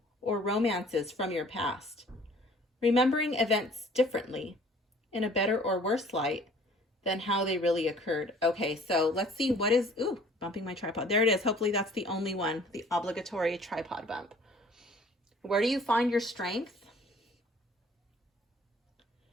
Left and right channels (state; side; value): normal; both; correlation 0.54